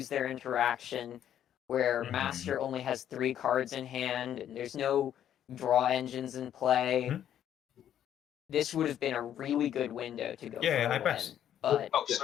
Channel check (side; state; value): right; quieter; 10.4 dB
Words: their interaction, where Master only has 3 cards in hand, and there's no draw engines in play. This would have been a really good window to go Yeah, for a I win, pass. but Oh,